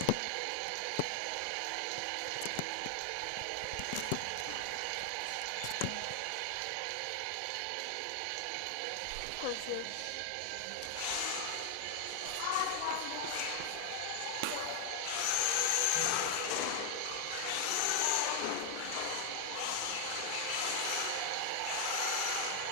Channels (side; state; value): both; different; correlation 0.00